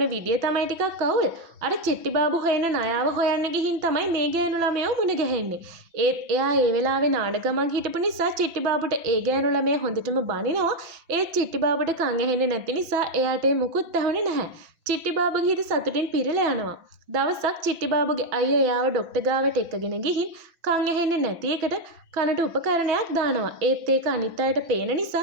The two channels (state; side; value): late; left; 6.0 ms